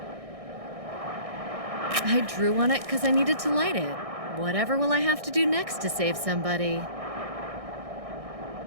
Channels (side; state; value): left; late; 1.6 ms